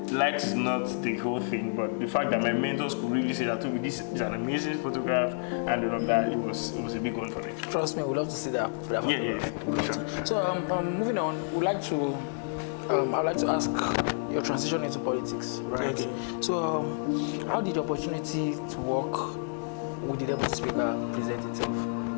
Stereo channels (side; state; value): right; silent; digital silence